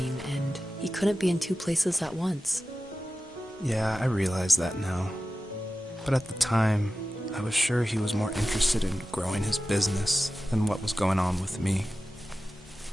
and he couldn't be in two places at once. Yeah, I realize that now. But at the time, I was sure he was more interested in growing his business than what was going on with me.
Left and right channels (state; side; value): normal; both; correlation 0.94